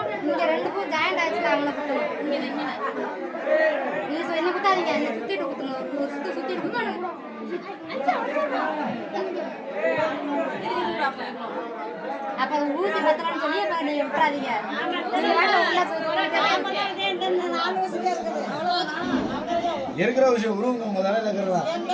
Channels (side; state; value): both; identical; correlation 1.00